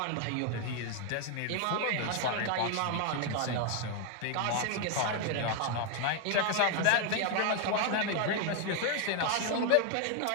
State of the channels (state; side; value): different; both; correlation 0.01